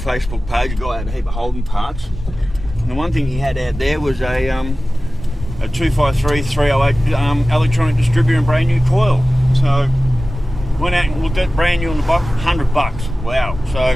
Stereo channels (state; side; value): normal; both; correlation 0.96